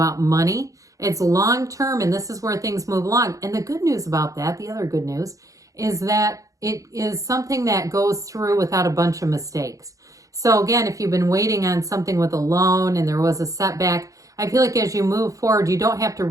money. It's long-term, and this is where things move along. And the good news about that, the other good news, is that it is something that goes through without a bunch of mistakes. So again, if you've been waiting on something with a loan and there was a setback, I feel like as you move forward, you don't have to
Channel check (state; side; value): late; left; 0.16 ms